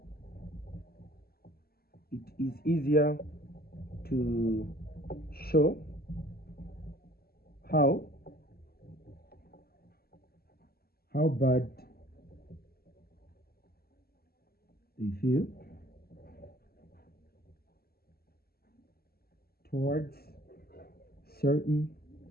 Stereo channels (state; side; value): late; right; 0.45 ms